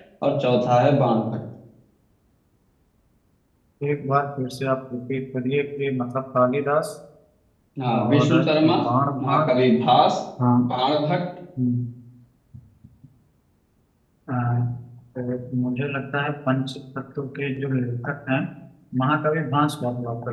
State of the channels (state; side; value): identical; both; correlation 1.00